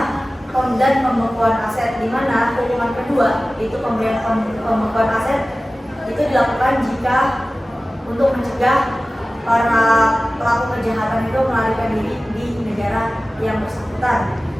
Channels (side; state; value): both; normal; correlation 0.96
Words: dan pembekuan aset, di mana hukuman kedua itu pemberian pembekuan aset itu dilakukan jika untuk mencegah para pelaku kejahatan itu melarikan diri di negara yang bersangkutan.